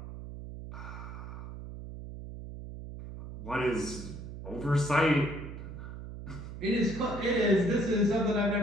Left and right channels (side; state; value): right; noise; hum, 10 dB below the sound